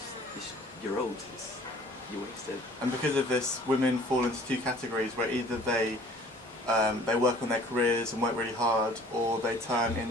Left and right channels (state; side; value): normal; both; correlation 0.51